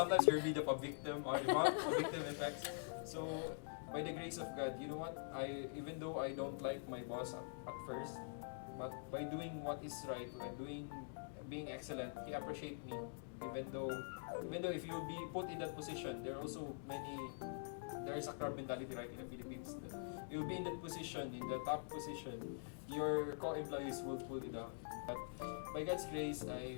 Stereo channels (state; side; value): silent; right; digital silence